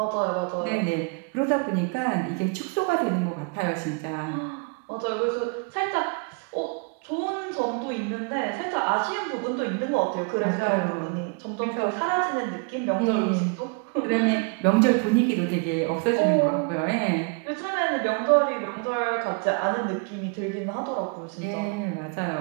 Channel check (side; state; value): left; quieter; 33.3 dB